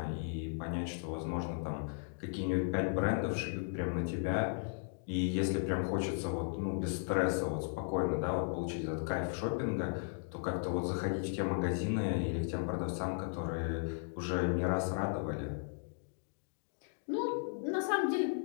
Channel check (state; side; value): silent; right; digital silence